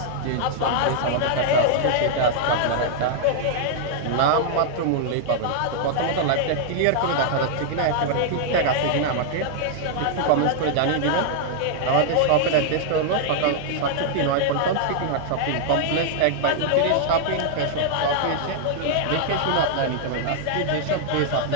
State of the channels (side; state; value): both; different; correlation -0.01